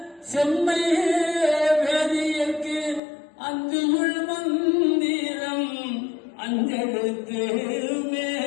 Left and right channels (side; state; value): right; drops out; at 3.0 s